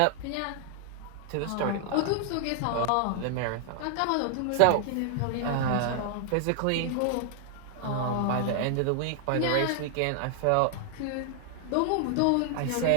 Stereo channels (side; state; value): both; different; correlation 0.00